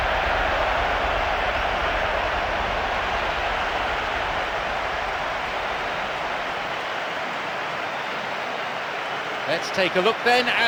Let's take a look then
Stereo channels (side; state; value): both; identical; correlation 1.00